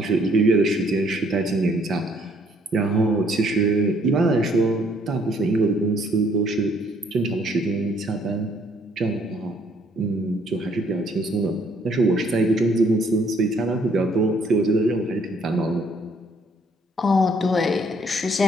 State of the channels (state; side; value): normal; both; correlation 0.64